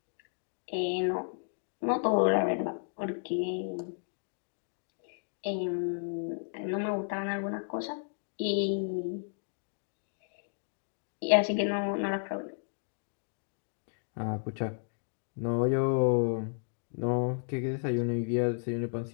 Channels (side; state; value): right; silent; digital silence